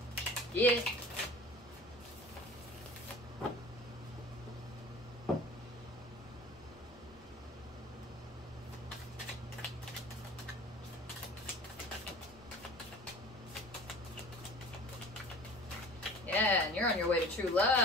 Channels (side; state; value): both; normal; correlation 0.42